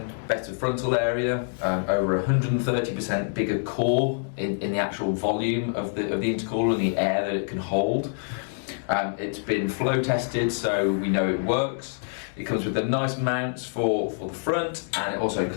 better frontal area, over 130% bigger core in the actual volume of the intercooler and the air that it can hold. It's been flow tested, so we know it works. It comes with the nice mounts for the front, and it also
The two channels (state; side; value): silent; right; digital silence